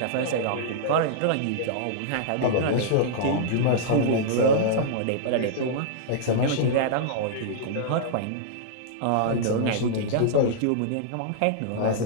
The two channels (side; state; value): both; different; correlation -0.02